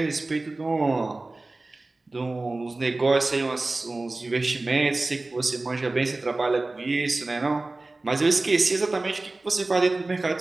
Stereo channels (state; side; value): quieter; left; 3.1 dB